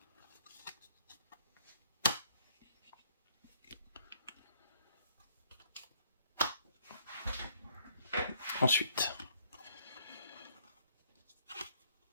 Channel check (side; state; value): both; inverted; correlation -0.65